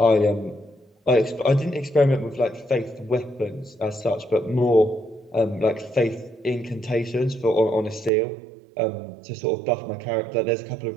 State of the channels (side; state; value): left; drops out; at 8.1 s